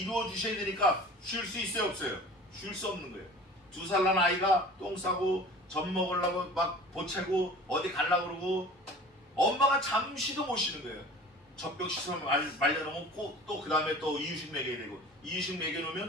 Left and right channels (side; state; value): both; normal; correlation 0.42